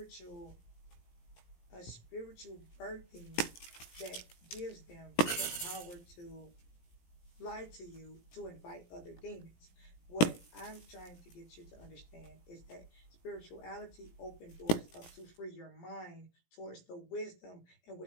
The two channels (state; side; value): late; right; 17 ms